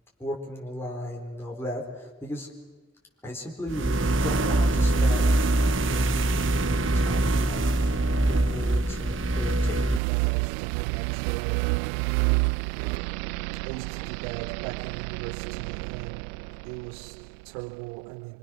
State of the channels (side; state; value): left; drops out; at 10.0 s